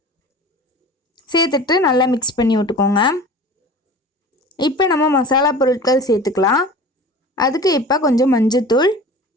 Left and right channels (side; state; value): both; normal; correlation 0.38